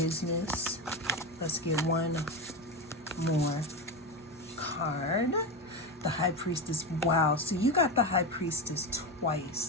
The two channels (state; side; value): normal; both; correlation 0.17